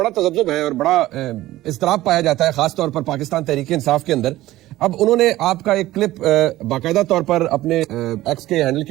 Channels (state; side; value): quieter; left; 16.1 dB